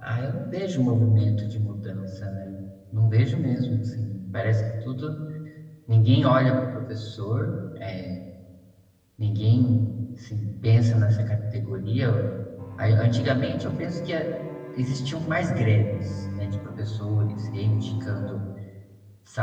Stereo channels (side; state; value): both; identical; correlation 1.00